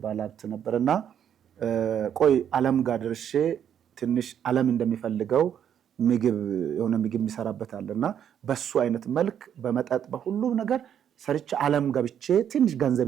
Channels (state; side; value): quieter; left; 9.2 dB